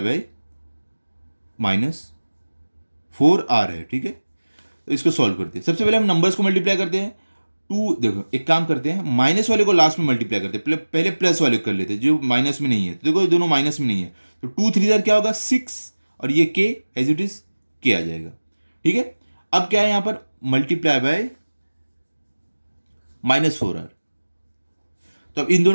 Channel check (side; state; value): both; inverted; correlation -1.00